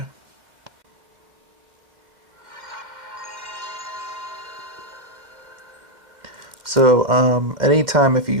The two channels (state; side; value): late; left; 2.1 ms